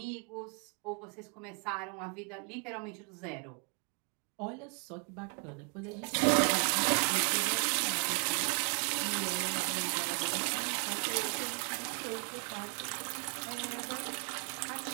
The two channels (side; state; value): left; quieter; 39.3 dB